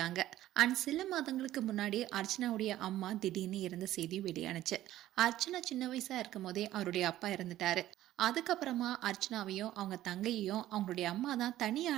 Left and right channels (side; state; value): left; quieter; 14.0 dB